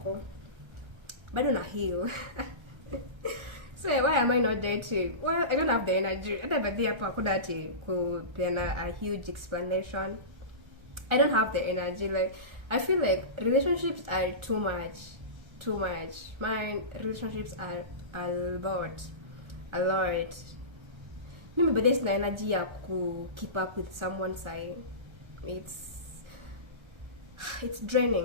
Bado na heal. So why am I not dating? Well, I don't have the energy. Hata baadhi hapo hakuna ati kupeana a huge explanation. I don't have the energy. Like, I feel like relationships are too much. My relationships are a lot. a lot. Mimi bado sina energy ya ku keep up with someone say. It's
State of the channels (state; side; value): late; left; 1.4 ms